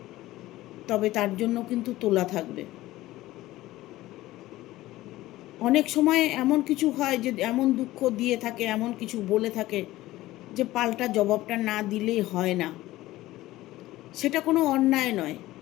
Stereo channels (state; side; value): quieter; right; 16.8 dB